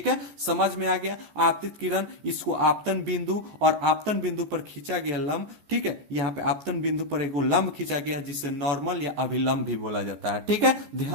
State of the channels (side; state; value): left; late; 14 ms